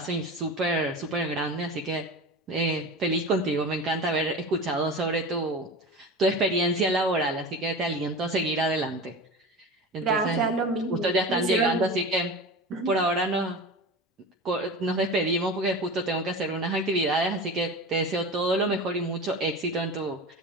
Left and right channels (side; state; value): both; normal; correlation 0.30